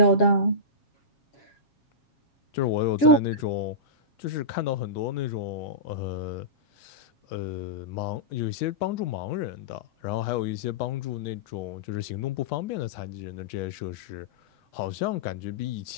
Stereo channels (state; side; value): late; right; 7.3 ms